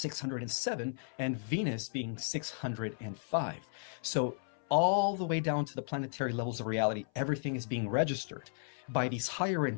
and Venus being 605. So all the way down to the planetary levels of reality, everything is being registered by these higher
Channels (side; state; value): right; silent; 55 dB below the other